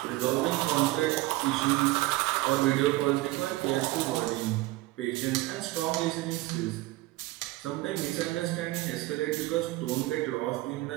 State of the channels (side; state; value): left; quieter; 19.1 dB